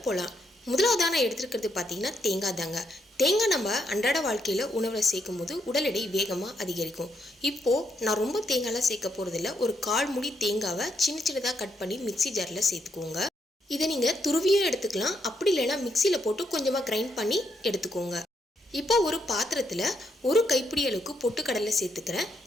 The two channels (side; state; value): both; normal; correlation 0.77